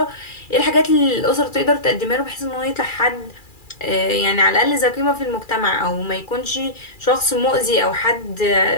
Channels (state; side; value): late; right; 2.4 ms